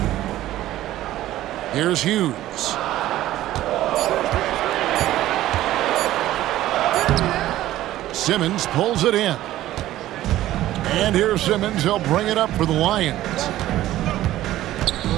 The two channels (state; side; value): quieter; left; 14.4 dB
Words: Here's Hughes. Simmons pulls it in. And here's Simmons. He'll bring it up for the Lions.